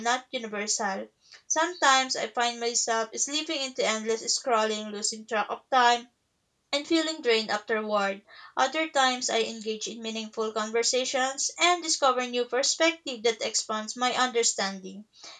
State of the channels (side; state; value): both; identical; correlation 1.00